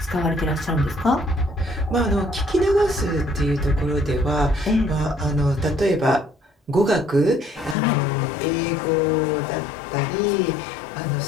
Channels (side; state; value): right; drops out; at 7.8 s